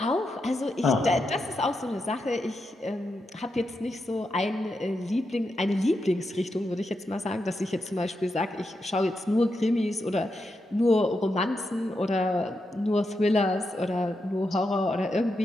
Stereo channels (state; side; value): normal; both; correlation 0.86